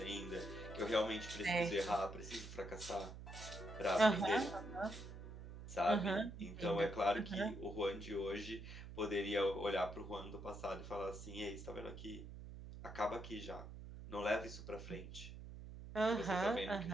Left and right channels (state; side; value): noise; right; hum, 11 dB below the sound